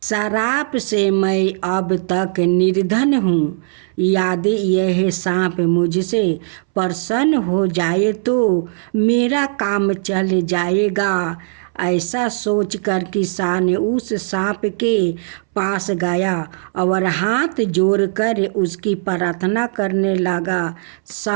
श्राप से मैं अब तक निर्धन हूँ। यदि यह सांप मुझसे प्रसन्न हो जाए तो मेरा काम चल जाएगा। ऐसा सोचकर किसान उस सांप के पास गया और हाथ जोड़कर उसकी प्रार्थना करने लगा।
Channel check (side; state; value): left; silent; 67 dB below the other